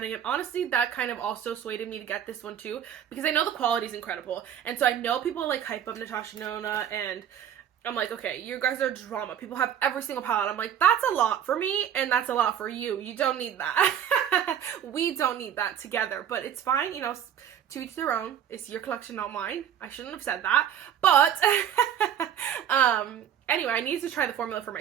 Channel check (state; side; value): quieter; left; 9.4 dB